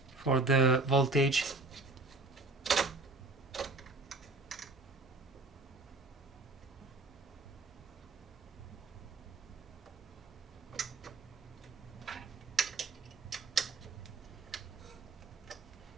for the voltage.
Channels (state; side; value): quieter; left; 3.4 dB